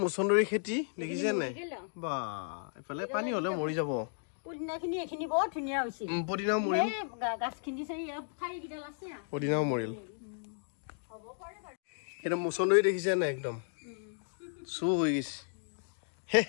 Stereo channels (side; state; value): right; silent; digital silence